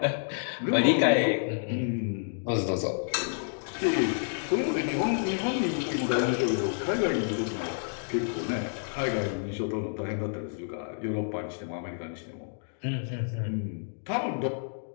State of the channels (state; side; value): silent; right; digital silence